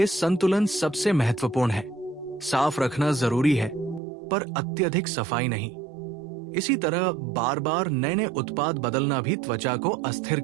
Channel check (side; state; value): left; drops out; at 4.0 s